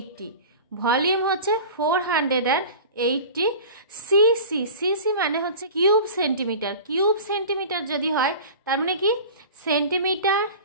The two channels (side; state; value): both; inverted; correlation -0.37